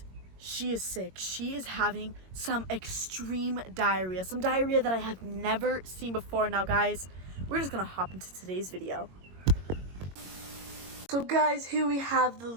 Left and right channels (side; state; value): left; late; 22 ms